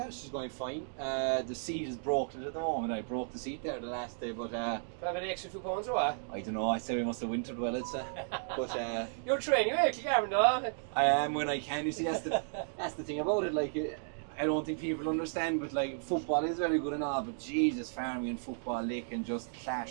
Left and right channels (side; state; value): left; silent; digital silence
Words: she's going fine. The seat is broken at the moment. I broke the seat there the last day, but have an extra 2 pounds or what? I don't know. I say we must have wintered well, I'd say. But you're training, you're Kilgarvan, though. I am when I can. You see, that's the thing about it. Like, I don't think people understand, but like football is very good and all, but Jesus, farming and football, they can just